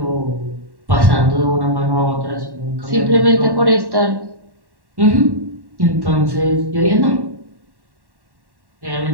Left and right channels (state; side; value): late; left; 1.1 ms